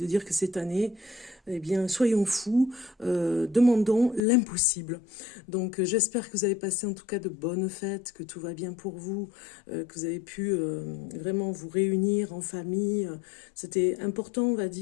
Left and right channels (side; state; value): right; drops out; at 4.2 s